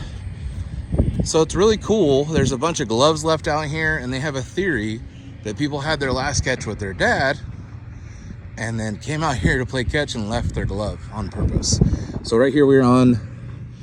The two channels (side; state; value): both; identical; correlation 1.00